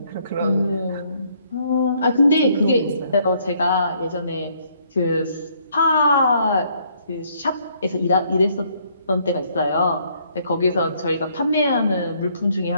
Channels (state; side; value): inverted; both; correlation -0.67